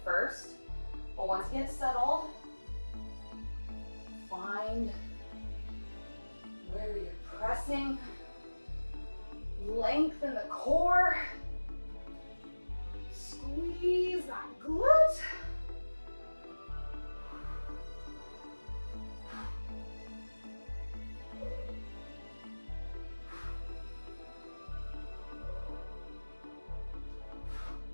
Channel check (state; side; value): inverted; both; correlation -1.00